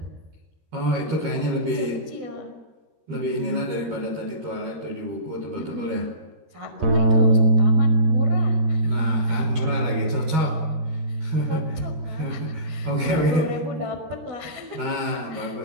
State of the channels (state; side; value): late; left; 13 ms